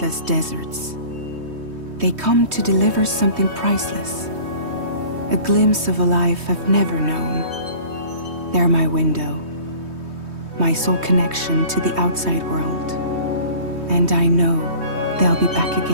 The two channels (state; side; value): late; left; 3.2 ms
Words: deserts, they come to deliver something priceless, a glimpse of a life I've never known. They're my window, my sole connection to the outside world. And I know they'll be back